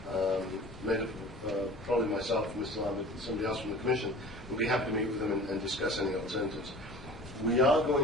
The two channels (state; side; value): normal; both; correlation 0.42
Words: made up of probably myself, Mr. Lambert, and somebody else from the Commission. We'll be happy to meet with them and discuss any alternatives. We are